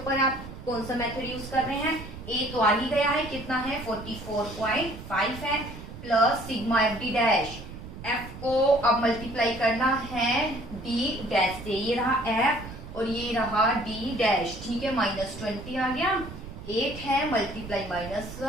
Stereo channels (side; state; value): right; noise; rumble, 12 dB below the sound